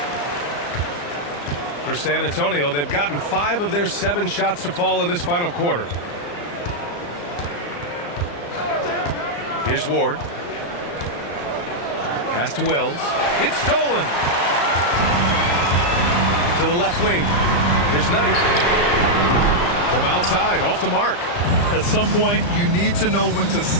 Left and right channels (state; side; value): late; right; 34 ms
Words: For San Antonio, they've gotten 5 of their 7 shots to fall in this final quarter. Here's Ward. Pass to Wells. It's stolen. To the left wing. Here's Knight. From outside, off the mark. At some point, you need to know when to